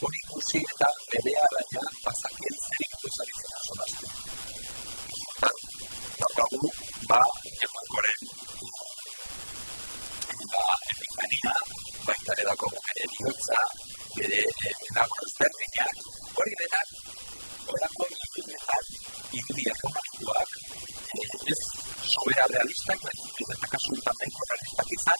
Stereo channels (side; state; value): both; inverted; correlation -1.00